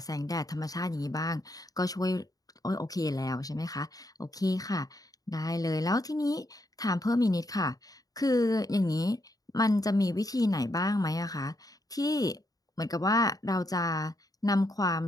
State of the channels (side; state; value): right; late; 0.18 ms